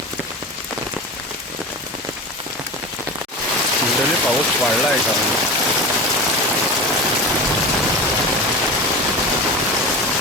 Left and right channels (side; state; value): both; normal; correlation 0.28